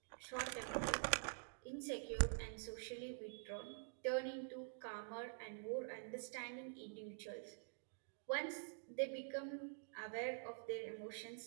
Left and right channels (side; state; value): left; silent; digital silence